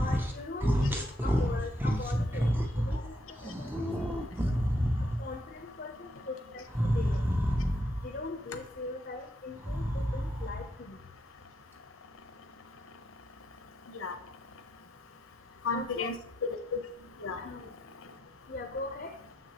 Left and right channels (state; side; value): normal; both; correlation 0.79